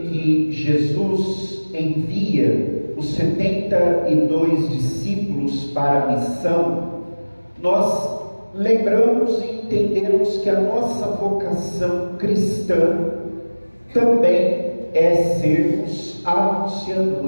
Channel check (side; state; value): both; inverted; correlation -1.00